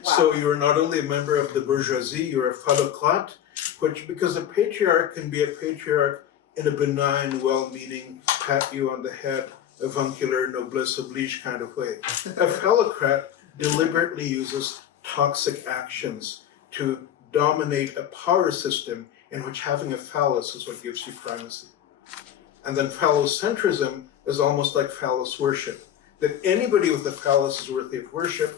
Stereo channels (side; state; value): right; quieter; 10.1 dB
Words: So you are not only a member of the bourgeoisie, you're a phallocrate, which, because a patriarch can be a patriarch in a benign, well-meaning, pat you on the head, avuncular, noblesse oblige kind of way. A phallocrat deliberately uses toxic actions to dominate a power system in which having a phallus is what gives you primacy. And then phallocentrism is almost like phallus worship, that anybody with a phallus is worthy of